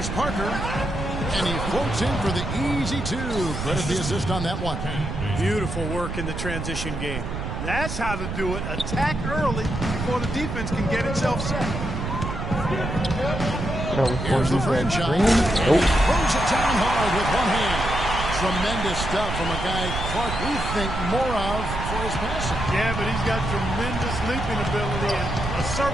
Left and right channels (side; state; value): right; noise; rumble, 5 dB below the sound